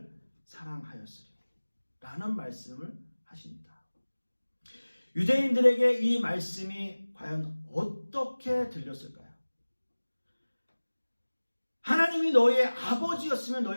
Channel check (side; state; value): both; inverted; correlation -1.00